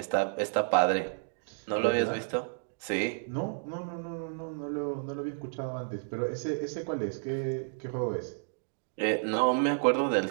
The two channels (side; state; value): left; silent; digital silence